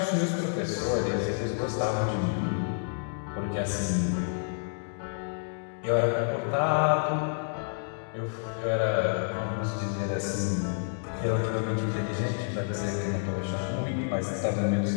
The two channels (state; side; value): silent; right; digital silence